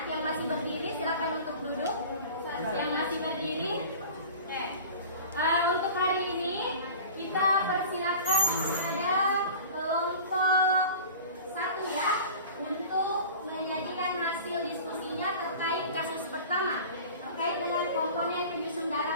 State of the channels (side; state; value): both; inverted; correlation -0.39